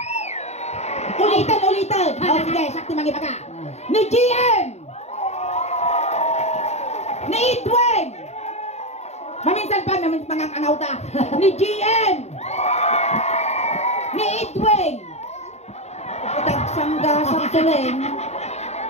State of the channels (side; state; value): right; late; 0.32 ms